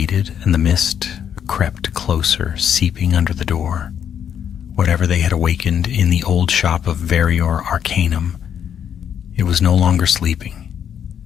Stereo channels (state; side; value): quieter; right; 8.7 dB